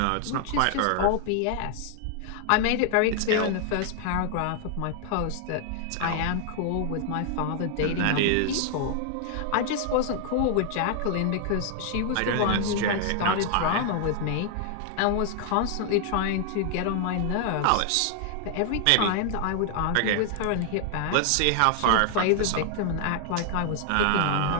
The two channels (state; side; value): different; both; correlation 0.00